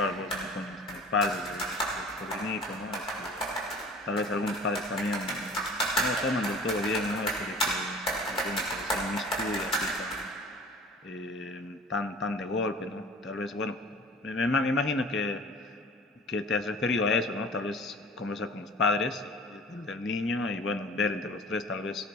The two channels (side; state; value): both; normal; correlation 0.44